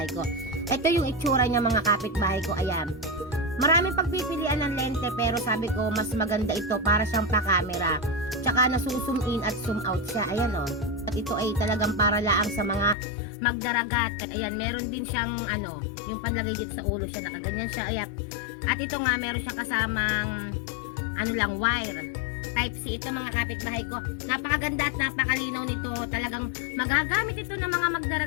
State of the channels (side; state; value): right; drops out; at 13.0 s